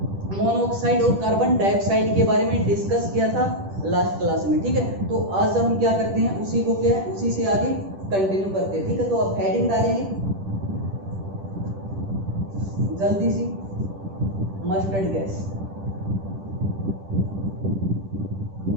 मोनोऑक्साइड और कार्बन डाइऑक्साइड के बारे में डिस्कस किया था लास्ट क्लास में, ठीक है। तो आज हम क्या करते हैं, उसी को क्या है उसी से आगे कंटिन्यू करते हैं, ठीक है। तो आप हेडिंग डालेंगे जल्दी सी, मस्टर्ड गैस।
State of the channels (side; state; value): left; late; 10 ms